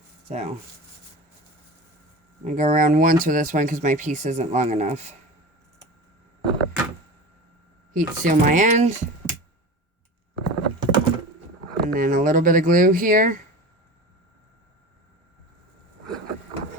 So, I'm going to go around once with this one because my piece isn't long enough. Heat seal my end. And then a little bit of glue here.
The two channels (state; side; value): normal; both; correlation 0.32